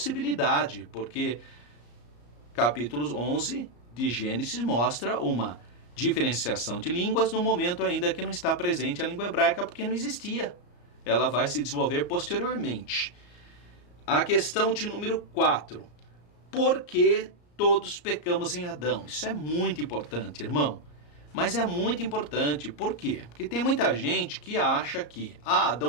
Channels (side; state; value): right; late; 34 ms